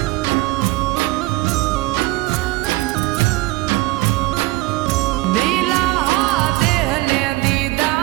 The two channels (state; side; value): quieter; left; 20.5 dB